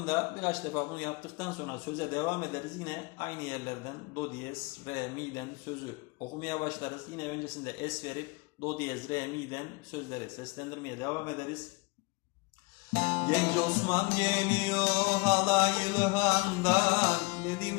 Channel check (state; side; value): quieter; right; 26.8 dB